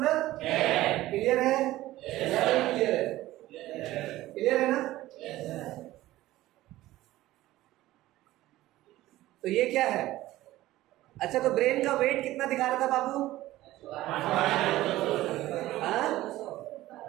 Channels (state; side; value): quieter; left; 16.2 dB